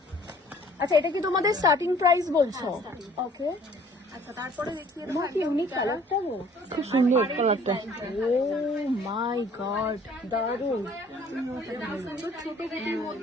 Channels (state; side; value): normal; both; correlation 0.55